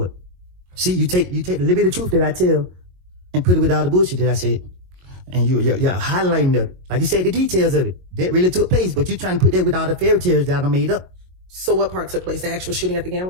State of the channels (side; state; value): left; late; 22 ms